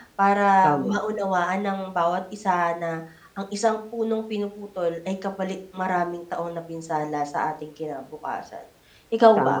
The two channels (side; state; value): both; identical; correlation 1.00